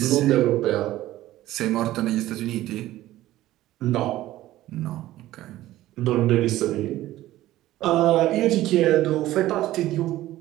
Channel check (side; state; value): left; quieter; 15.3 dB